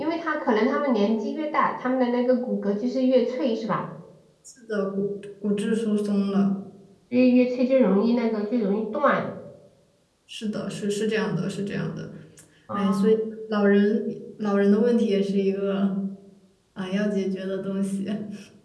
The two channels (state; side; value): identical; both; correlation 1.00